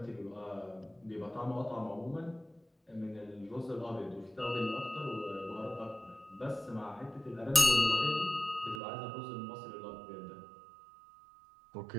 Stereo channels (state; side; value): drops out; left; at 8.8 s